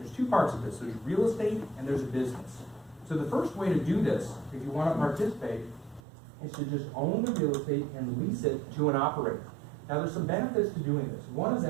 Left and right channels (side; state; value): left; drops out; at 6.0 s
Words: 2 parts of this. There's real estate and there's a business. So the first way to do this, if you want to participate, is to just own the real estate and lease it to an operator. Now there's some benefits to doing this. One of